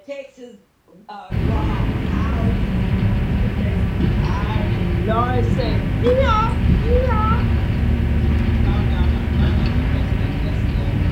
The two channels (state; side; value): identical; both; correlation 1.00